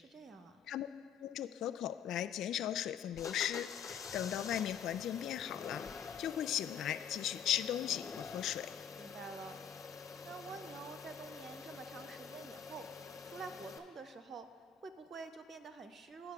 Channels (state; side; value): quieter; right; 8.0 dB